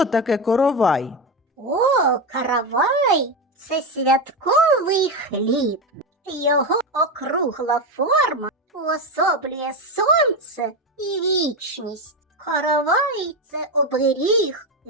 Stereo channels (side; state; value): both; normal; correlation 0.14